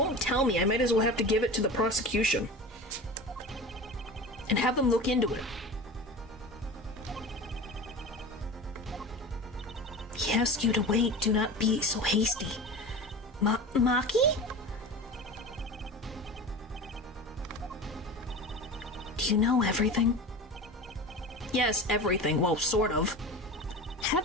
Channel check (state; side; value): normal; both; correlation 0.32